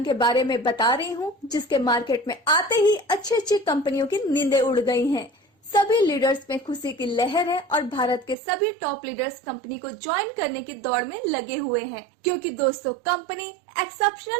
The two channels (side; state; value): left; drops out; at 8.3 s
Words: के बारे में बता रही हूँ जिसके मार्केट में आते ही अच्छी कंपनियों की नींदें उड़ गई हैं। सभी लीडर्स में खुशी की लहर है और भारत के सभी टॉप लीडर्स कंपनी को ज्वाइन करने की दौड़ में लगे हुए हैं, क्योंकि दोस्तों कंपनी